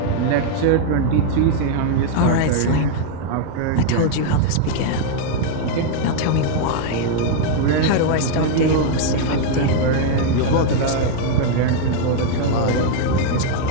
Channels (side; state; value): both; different; correlation 0.00